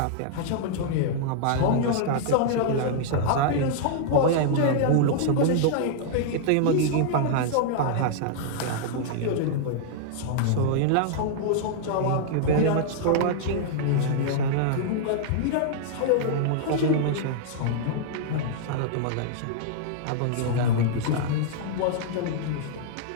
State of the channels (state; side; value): different; both; correlation -0.01